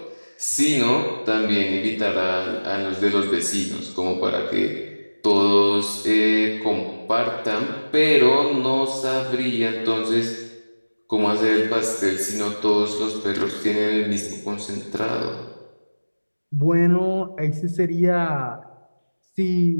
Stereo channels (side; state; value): both; inverted; correlation -1.00